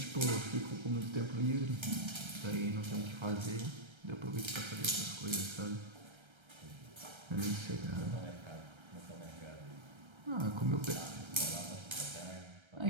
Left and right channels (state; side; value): late; left; 1.3 ms